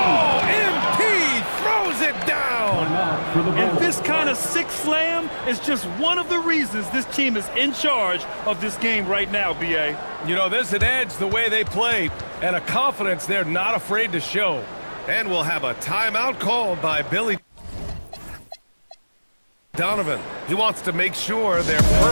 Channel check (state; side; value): inverted; both; correlation -1.00